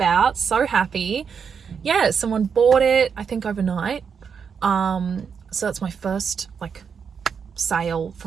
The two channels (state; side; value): quieter; left; 6.6 dB